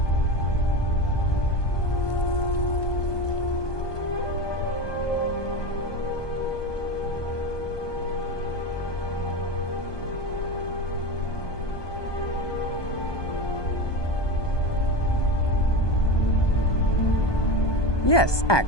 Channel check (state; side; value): late; right; 1.2 ms